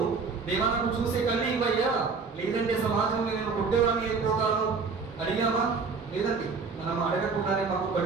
దేవా నాకు చూసే కళ్ళు ఇవ్వయ్యా, లేదంటే సమాజంలో నేను పుట్టేవాడిని అయిపోతాను అడిగామా? లేదండి. మనం అడగకుండానే మాకు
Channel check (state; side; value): quieter; left; 4.8 dB